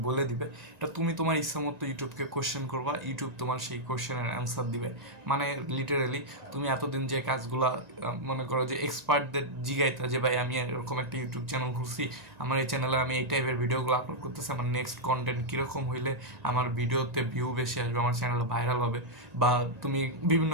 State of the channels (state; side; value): late; left; 1.9 ms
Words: বলে দিবে। এটা তুমি তোমার ইচ্ছা মতো ইউটিউবকে কোশ্চেন করবা, ইউটিউব তোমার সেই কোশ্চেনের অ্যান্সার দিবে। মানে লিটারেলি তুমি এতদিন যে কাজগুলা মনে করো যে এক্সপার্টদের জিগাইতা যে ভাই আমি এরকম একটা ইউটিউব চ্যানেল খুলছি, আমার এই চ্যানেলে আমি এই টাইপের ভিডিওগুলো আপলোড করতেছি, আমার নেক্সট কন্টেন্ট কীরকম হইলে আমার ভিডিওতে ভিউ বেশি আসবে, আমার চ্যানেল ভাইরাল হবে, বা তুমি বিভিন্ন